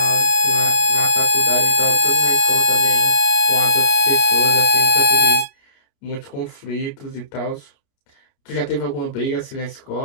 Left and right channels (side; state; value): right; late; 28 ms